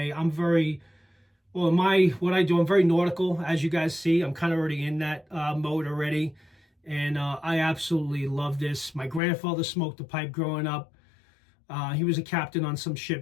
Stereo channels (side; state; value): right; drops out; at 9.2 s